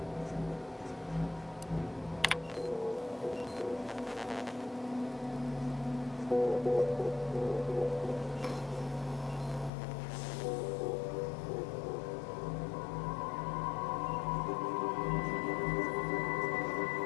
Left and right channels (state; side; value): drops out; right; at 9.7 s